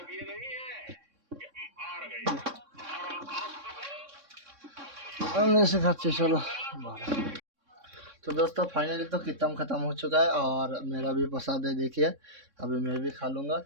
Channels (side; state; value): left; late; 3.6 ms